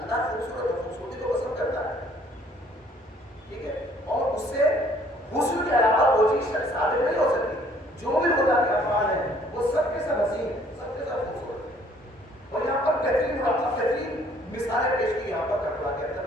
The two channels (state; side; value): normal; both; correlation 0.60